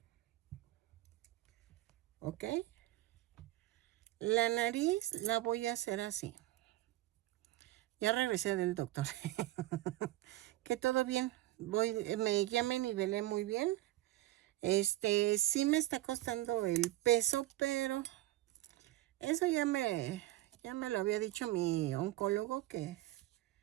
¿Ok? La nariz la voy a hacer así. Ya regresé del doctor. Que todo bien. Ya me nivelé muy bien. Sí me está costando el peso, pero eso ya me lo había dicho mi oncólogo que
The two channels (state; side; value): quieter; left; 16.4 dB